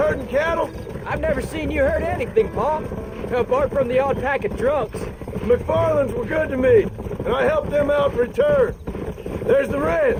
cattle? I've never seen you hurt anything, Pa. Apart from the odd pack of drunks. The McFarlands were good to me, and I helped them out in return. There's the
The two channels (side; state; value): both; identical; correlation 1.00